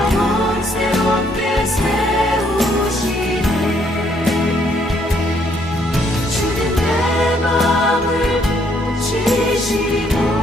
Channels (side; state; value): both; normal; correlation 0.69